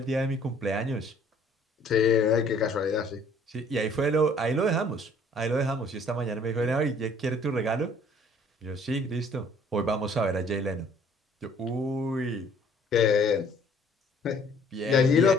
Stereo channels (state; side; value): normal; both; correlation 0.58